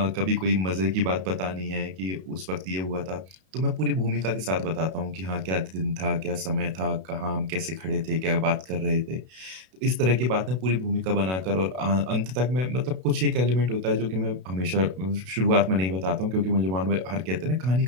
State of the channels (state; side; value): late; left; 32 ms